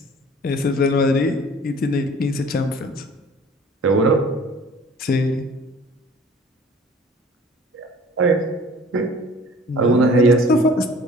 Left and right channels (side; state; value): both; normal; correlation 0.48